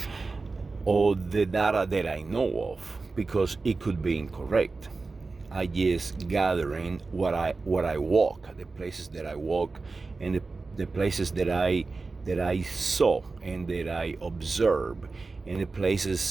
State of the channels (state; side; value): quieter; left; 3.9 dB